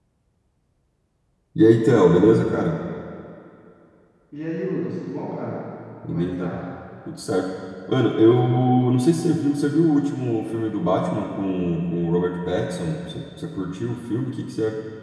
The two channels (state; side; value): identical; both; correlation 1.00